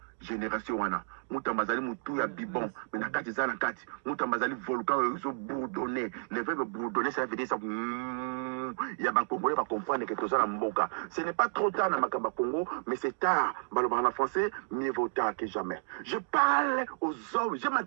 génération wana. Mutamba zali mutu ya bibon, mais na kati zana kati. Mutamba zali volcan ils bourdonné. Le verbe bourdonner ça veut dire ça. Il y a un Congolais va comprendre que tout ça mboka. Ce n'est pas trop tard dans Makamba Congo, mais c'est tard. En français, mieux vaut tard que jamais. Je parle aux hommes, je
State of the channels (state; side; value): silent; left; digital silence